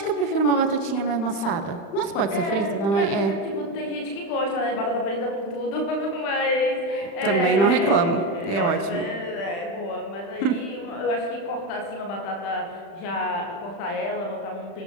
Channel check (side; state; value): right; late; 35 ms